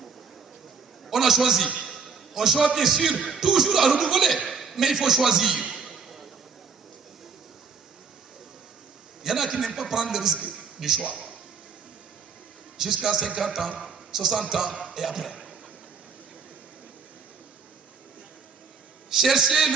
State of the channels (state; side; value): quieter; left; 5.6 dB